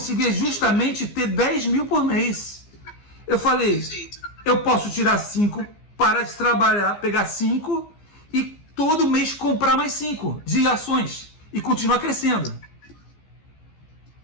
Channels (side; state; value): right; late; 15 ms